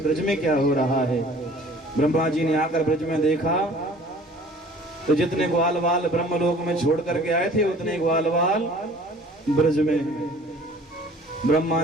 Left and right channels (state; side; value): normal; both; correlation 0.50